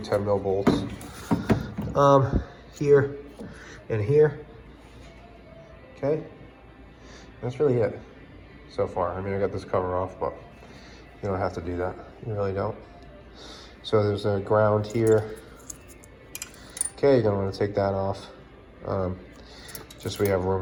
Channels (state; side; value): identical; both; correlation 1.00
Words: mil bolts. Here and here. Okay. That's really it so far. I mean, I got this cover off, but you don't have to do that. You really don't. So there's a ground here. Okay, you're gonna want to take that off. Just so we have